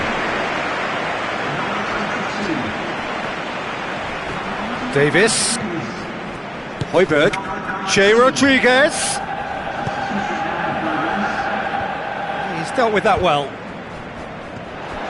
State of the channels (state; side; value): identical; both; correlation 1.00